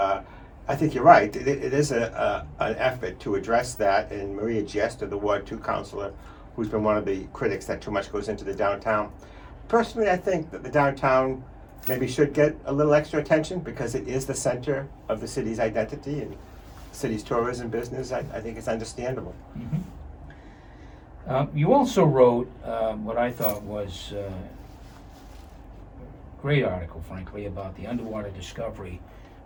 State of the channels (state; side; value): identical; both; correlation 1.00